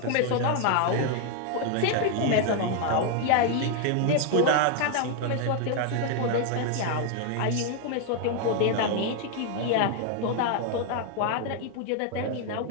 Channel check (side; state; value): both; different; correlation 0.00